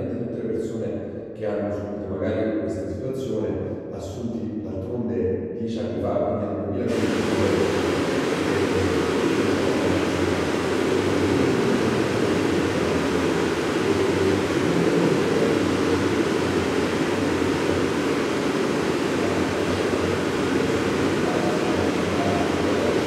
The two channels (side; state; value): both; identical; correlation 1.00